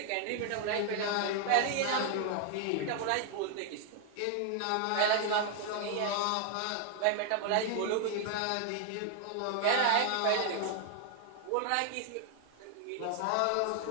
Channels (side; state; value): both; different; correlation 0.00